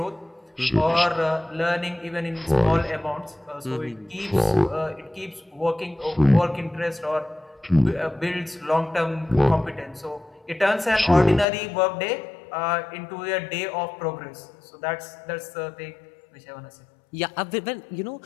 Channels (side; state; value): right; drops out; at 11.5 s